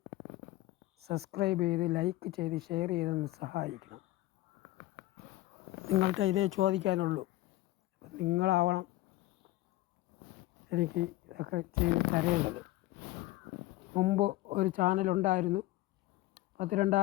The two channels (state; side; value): quieter; right; 17.2 dB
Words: സബ്സ്ക്രൈബ് ചെയ്ത് ലൈക്ക് ചെയ്ത് ഷെയർ ചെയ്തൊന്ന് സഹായിക്കണം. നിങ്ങൾക്ക് ഇതേ ചോദിക്കാനുള്ളൂ. നിങ്ങളാവണം എനിക്ക് ഇതൊക്കെ ചെയ്ത് തരേണ്ടത്. മുമ്പ് ഒരു ചാനലുണ്ടായിരുന്നു,